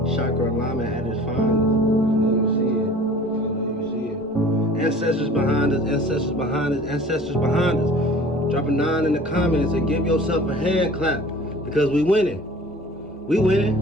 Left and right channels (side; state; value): left; noise; rumble, 30 dB below the sound